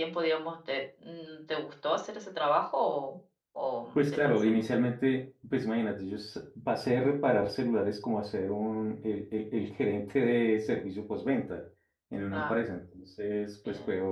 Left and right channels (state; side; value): identical; both; correlation 1.00